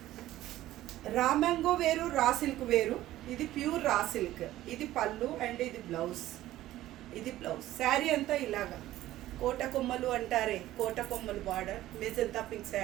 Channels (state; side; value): quieter; left; 14.8 dB